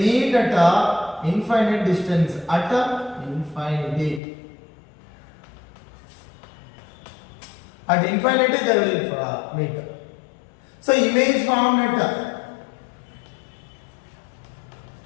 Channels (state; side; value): drops out; right; at 4.2 s